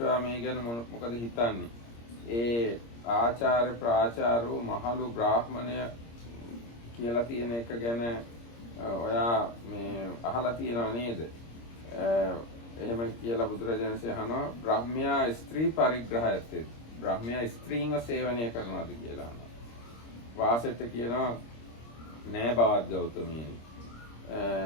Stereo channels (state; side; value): late; right; 26 ms